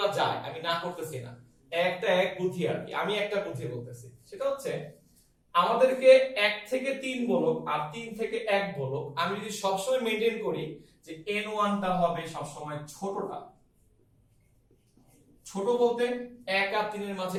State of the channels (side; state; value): both; identical; correlation 1.00